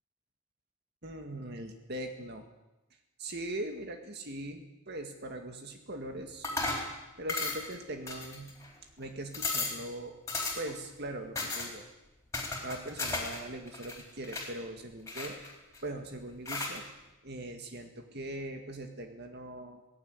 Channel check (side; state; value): both; normal; correlation 0.04